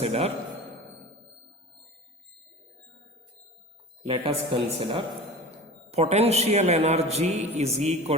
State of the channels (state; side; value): normal; both; correlation 0.35